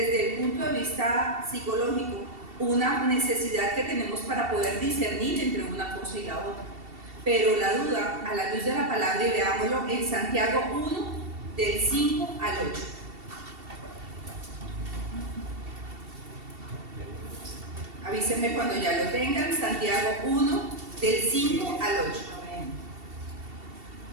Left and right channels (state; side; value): late; left; 2.7 ms